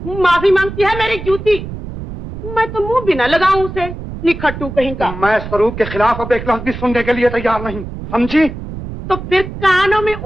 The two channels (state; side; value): noise; right; rumble, 9 dB below the sound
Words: माफी मांगती है मेरी जूती। मैं तो मुंह भी न लगाऊं उसे, निखट्टू कहीं का। मैं स्वरूप के खिलाफ अब एक लफ्ज भी सुनने के लिए तैयार नहीं, समझी? तो फिर कानों में